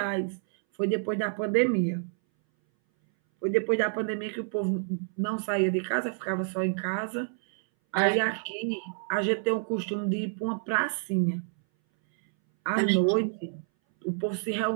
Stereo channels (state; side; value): silent; left; 59 dB below the other